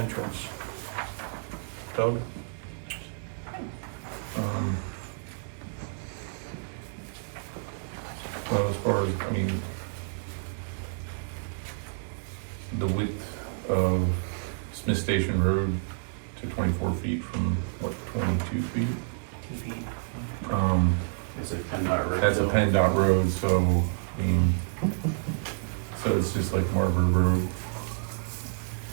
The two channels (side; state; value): left; silent; digital silence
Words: Doug? Well, as far as, I mean, the width of Smith Station Road to 24 feet from, what, 22 feet? 2 feet. It's a PennDOT road. That's a so- PennDOT road, so, I mean, so it's just like Marbury Road.